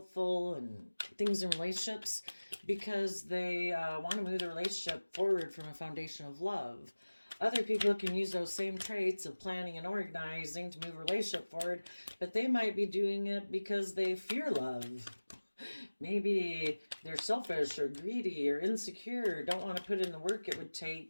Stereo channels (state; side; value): inverted; both; correlation -1.00